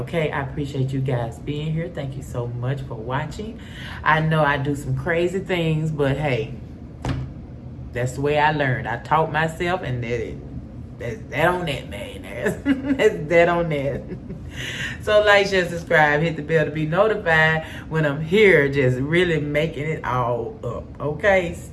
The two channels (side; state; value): both; identical; correlation 1.00